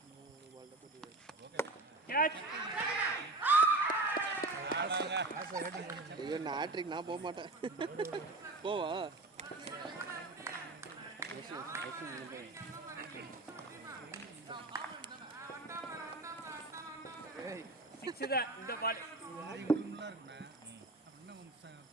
25 catch ஐயோ நான் ஹேட்ரிக் நான் போக மாட்டேன் போவா இந்த பால்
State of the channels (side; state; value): left; quieter; 3.1 dB